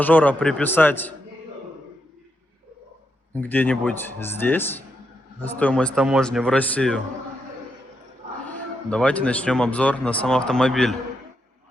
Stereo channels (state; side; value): normal; both; correlation 0.82